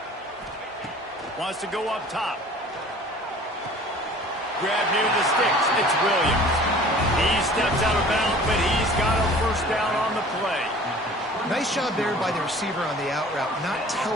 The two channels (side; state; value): both; normal; correlation 0.47